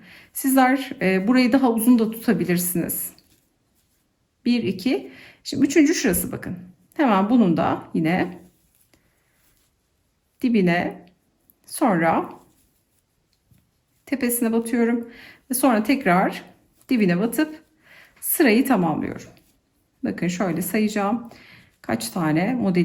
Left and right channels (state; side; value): identical; both; correlation 1.00